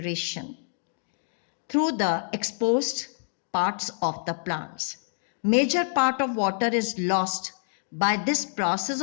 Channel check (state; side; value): silent; right; digital silence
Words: through the exposed parts of the plants. Major part of water is lost by this process